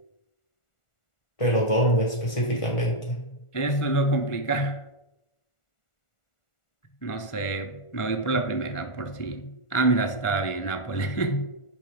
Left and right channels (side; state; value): right; late; 1.4 ms